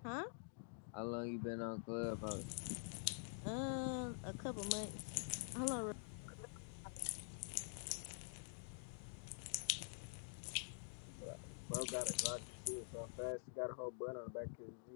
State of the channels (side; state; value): right; silent; digital silence